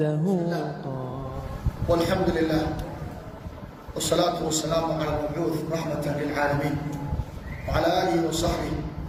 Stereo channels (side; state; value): both; identical; correlation 1.00